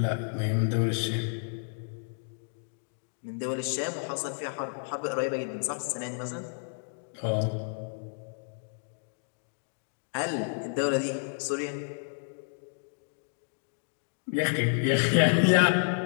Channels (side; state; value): right; silent; digital silence